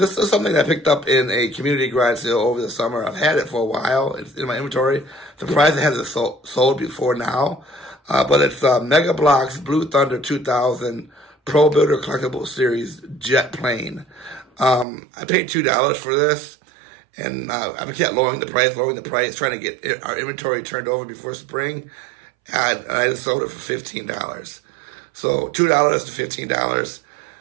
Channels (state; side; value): drops out; left; at 14.9 s